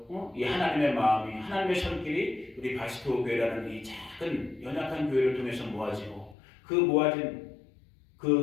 이 하나님의 마음이, 하나님의 손길이 우리 바스토 교회라는 이 작은 연약한 교회를 통해서 모아지고, 그 모아진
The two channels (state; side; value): drops out; right; at 6.4 s